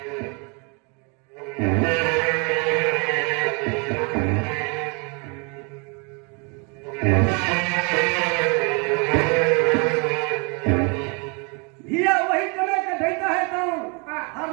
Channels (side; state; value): left; quieter; 33.4 dB